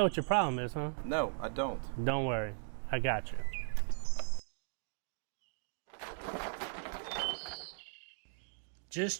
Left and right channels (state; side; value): silent; left; digital silence